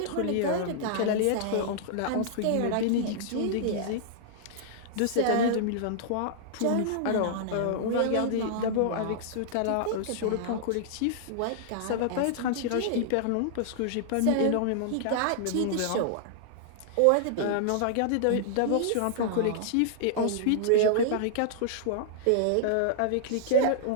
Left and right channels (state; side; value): different; both; correlation -0.01